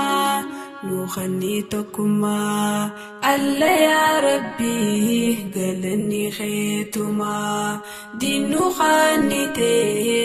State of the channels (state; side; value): identical; both; correlation 1.00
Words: نخني توكما الله يا ربي قلني خيتما دينو